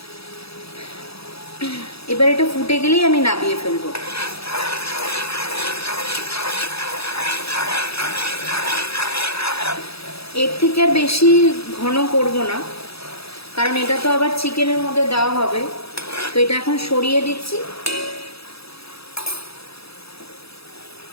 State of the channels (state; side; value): late; right; 0.77 ms